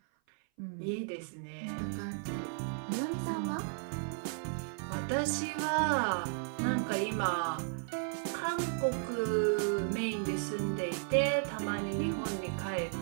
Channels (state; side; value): silent; left; 55 dB below the other